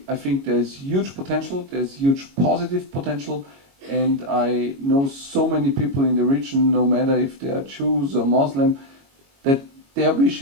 think there's huge potential, there's huge positive potential, and I know so many people in the region, no matter if they are Jews or Muslim, that their wish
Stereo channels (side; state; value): left; late; 22 ms